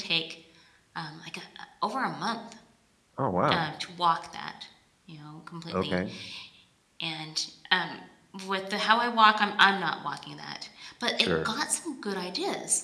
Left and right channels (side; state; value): both; identical; correlation 1.00